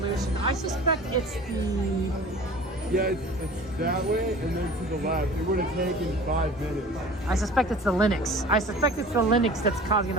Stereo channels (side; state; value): both; normal; correlation 0.42